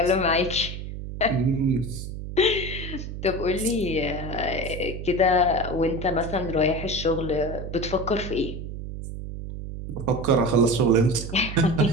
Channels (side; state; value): right; noise; hum, 8 dB below the sound